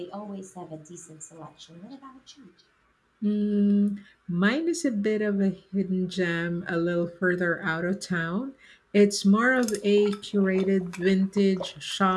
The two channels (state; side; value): identical; both; correlation 1.00